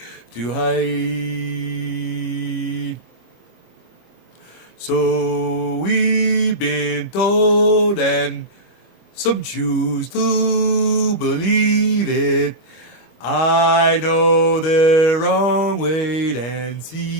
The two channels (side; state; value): right; late; 25 ms